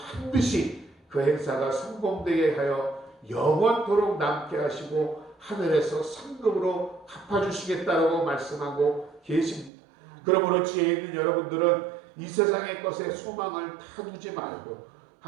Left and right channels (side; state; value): left; drops out; at 9.7 s